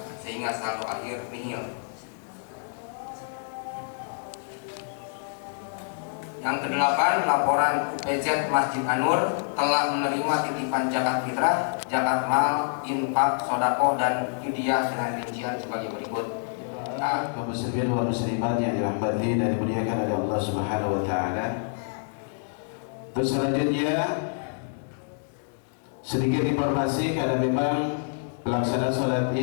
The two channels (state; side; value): silent; right; digital silence